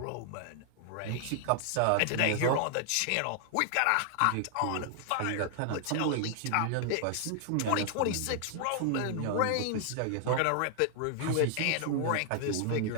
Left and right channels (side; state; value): both; different; correlation 0.00